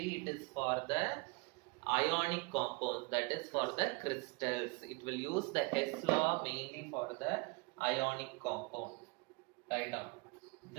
it is for the ionic compounds, that is for the crystals. It will use the Hess law mainly for the ionic compound. Write down.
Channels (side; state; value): left; quieter; 28.0 dB